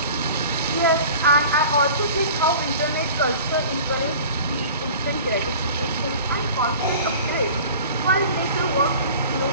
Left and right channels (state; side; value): inverted; both; correlation -0.42